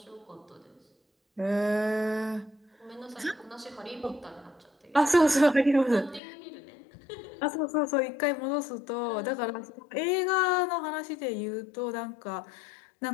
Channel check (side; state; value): right; drops out; at 6.2 s